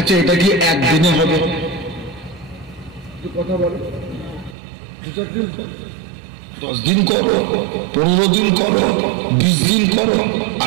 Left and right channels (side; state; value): left; drops out; at 4.5 s